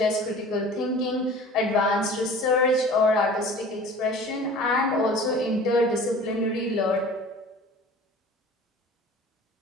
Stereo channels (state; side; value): normal; both; correlation 0.43